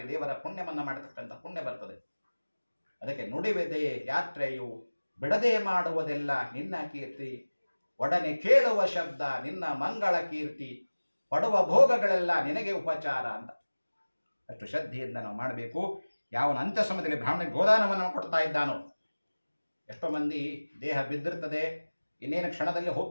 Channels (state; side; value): inverted; both; correlation -1.00